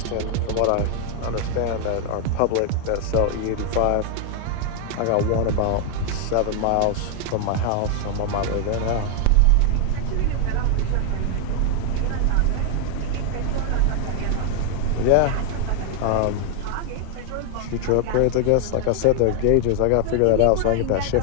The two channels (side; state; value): both; different; correlation 0.00